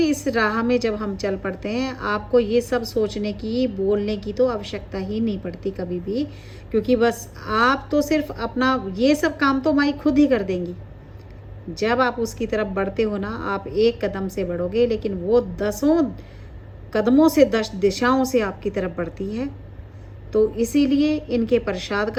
राह में जब हम चल पड़ते हैं, आपको ये सब सोचने की, बोलने की तो आवश्यकता ही नहीं पड़ती कभी भी, क्योंकि बस आप तो सिर्फ अपना ये सब काम तो माई खुद ही कर देंगी। जब आप उसकी तरफ बढ़ते हो ना, आप एक कदम से बढ़ोगे, लेकिन वो 10 कदमों से 10 दिशाओं से आपकी तरफ बढ़ती है। तो इसीलिए इनके प्रसाद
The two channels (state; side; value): identical; both; correlation 1.00